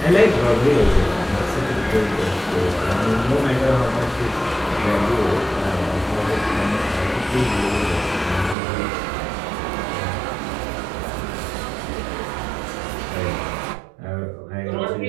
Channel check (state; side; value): drops out; left; at 8.6 s